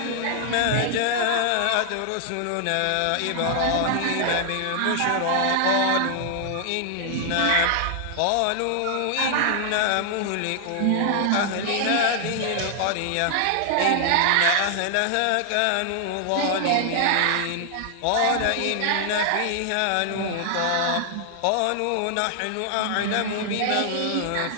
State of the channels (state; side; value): different; both; correlation 0.00